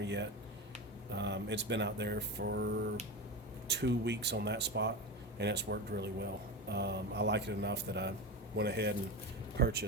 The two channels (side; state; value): both; normal; correlation 0.22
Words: yet. It's been out there for 2 weeks on that spot, and it's worked really well. I like it enough that I went ahead and